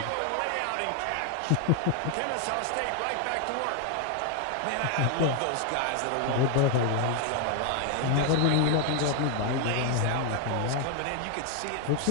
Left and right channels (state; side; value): different; both; correlation 0.00